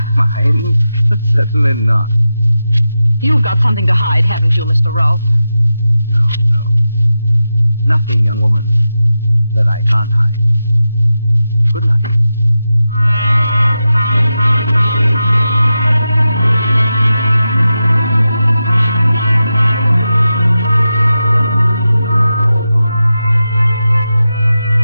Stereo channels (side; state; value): both; inverted; correlation -0.91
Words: Mind? Certainly not. You've got something to hide, haven't you, Mr. Rolfe? No. Nothing, young woman, that I can't hide. Good night.